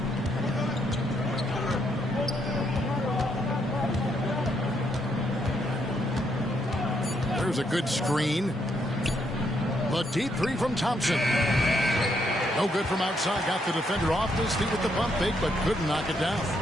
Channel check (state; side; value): normal; both; correlation 0.75